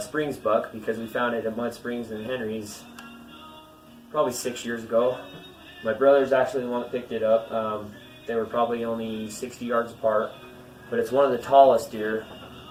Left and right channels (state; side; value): identical; both; correlation 1.00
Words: Springs buck because we found it at Mud Springs in Henry's probably 6 years ago. My brother's actually the one that picked it up. They were probably only 60 yards apart, but it's one of the tallest deer